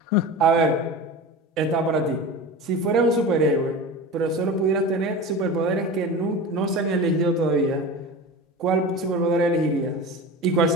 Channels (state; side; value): normal; both; correlation 0.31